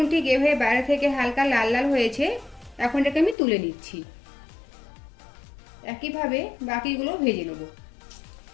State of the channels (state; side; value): drops out; right; at 3.4 s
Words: ঠিক এভাবে বাইরে থেকে হালকা লাল লাল হয়েছে। এখন এটাকে আমি তুলে নিচ্ছি। একইভাবে বাকিগুলো ভেজে নেব।